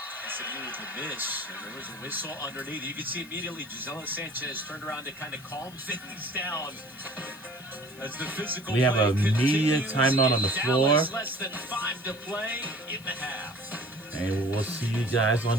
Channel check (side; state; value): left; noise; hiss, 22 dB below the sound